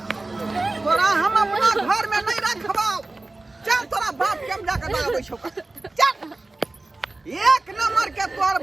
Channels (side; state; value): left; quieter; 3.1 dB